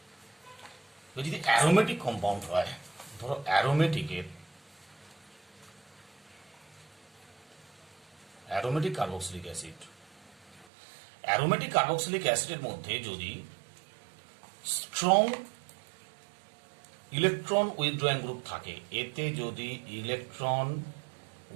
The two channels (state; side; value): drops out; left; at 10.7 s